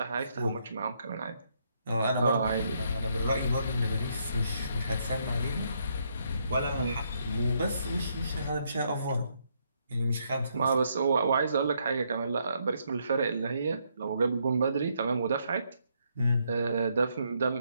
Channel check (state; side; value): inverted; both; correlation -0.74